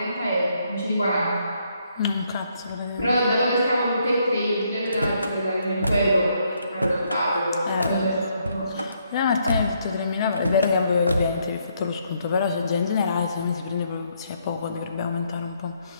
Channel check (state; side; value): inverted; both; correlation -0.73